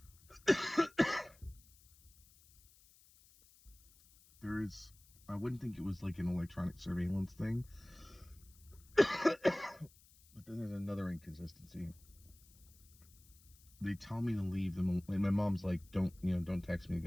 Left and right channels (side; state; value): left; noise; hiss, 26 dB below the sound